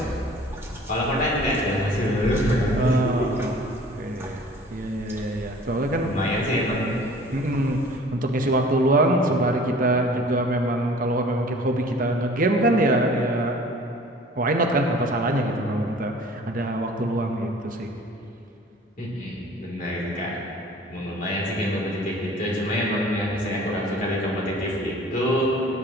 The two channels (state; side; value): normal; both; correlation 0.48